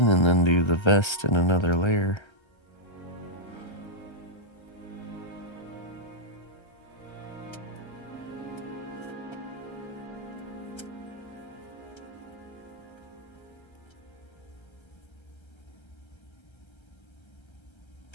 and then do the vest in another layer.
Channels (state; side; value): late; right; 1.3 ms